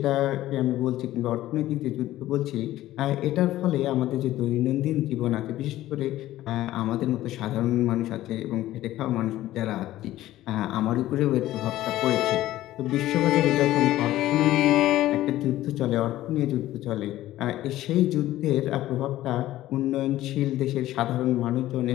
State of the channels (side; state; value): right; quieter; 14.9 dB